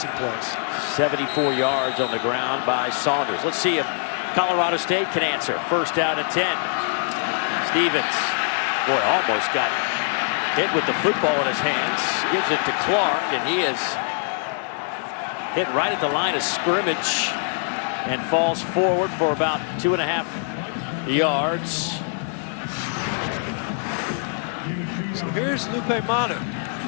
plays. 74 yards on the ground by Saunders. Let's see if Colorado State can answer. First down and 10. Stevens, boy, almost got hit with the football in his hands. Gives it to Clark, and he is hit right at the line of scrimmage and falls forward for about 2.5 yards. So here's Lupe Manu.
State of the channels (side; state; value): right; silent; 63 dB below the other